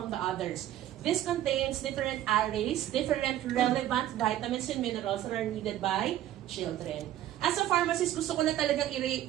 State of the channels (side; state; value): left; quieter; 12.8 dB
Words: the others? This contains different arrays, different relevant vitamins and minerals that are needed by children. As a pharmacist, gusto ko na talagang